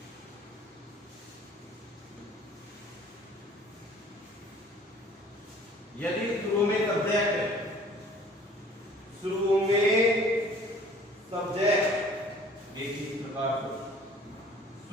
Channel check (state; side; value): normal; both; correlation 0.51